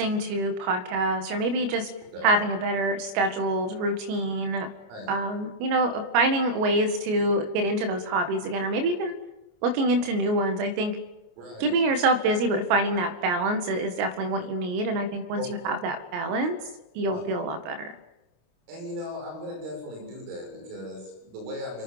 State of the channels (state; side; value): late; left; 26 ms